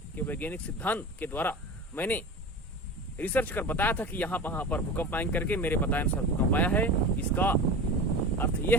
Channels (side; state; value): both; normal; correlation 0.31